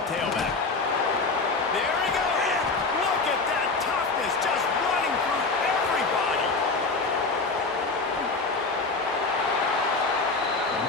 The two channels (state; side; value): quieter; right; 3.9 dB